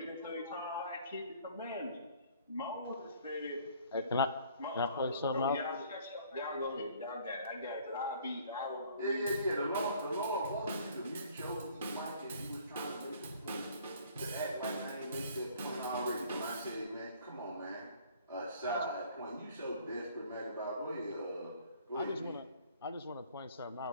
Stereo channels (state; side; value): inverted; both; correlation -0.55